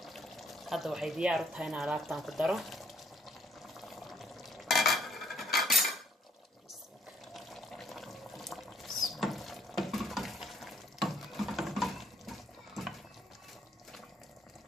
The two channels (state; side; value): normal; both; correlation 0.66